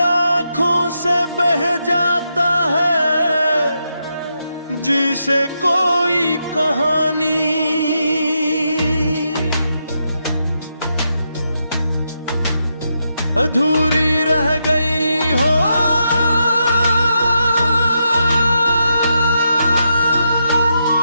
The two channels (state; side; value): inverted; both; correlation -0.83